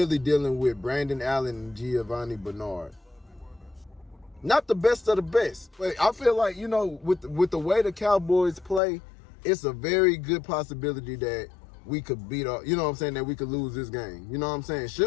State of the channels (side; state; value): right; drops out; at 8.8 s